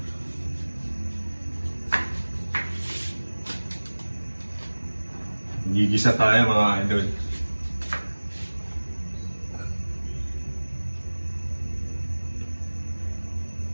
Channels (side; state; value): both; inverted; correlation -1.00